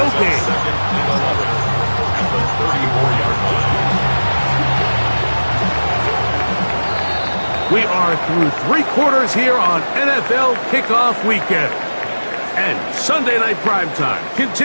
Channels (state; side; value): inverted; both; correlation -1.00